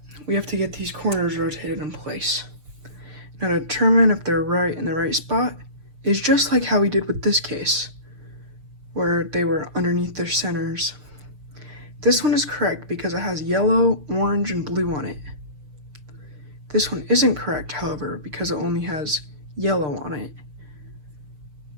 we have to get these corners rotated in place. Now to determine if they're right in the right spot is just like how we did with this case, where they were underneath their centers. This one is correct because it has yellow, orange, and blue on it. This one isn't correct, however, because it only has yellow on it.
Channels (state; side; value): late; left; 6.6 ms